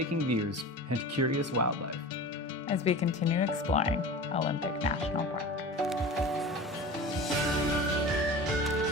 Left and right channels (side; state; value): both; normal; correlation 0.34